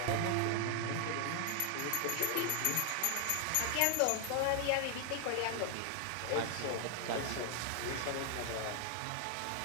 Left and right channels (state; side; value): different; both; correlation 0.00